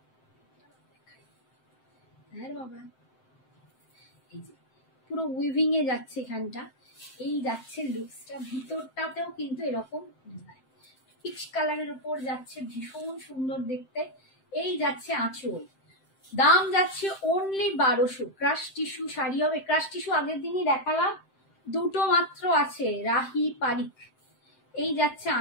হ্যাঁ বাবা, এই যে পুরো উইভিং এ যাচ্ছে এখানটা, এই যাচ্ছে লুকসটা, ভিতরটাতেও কিন্তু এরকম ডিজাইন পিচ কালারের উপর যাচ্ছে, ভীষণ সুন্দর দেখতে। এই যাচ্ছে আঁচল, দাম যাচ্ছে অনলি 1200। ক্রাশ টিস্যু শাড়ি হবে, ক্রাশ টিস্যু আগের দিনই দেখালাম, দুটো মাত্র আছে, রাহি পারিক। এই যাচ্ছে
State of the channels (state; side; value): late; right; 7.7 ms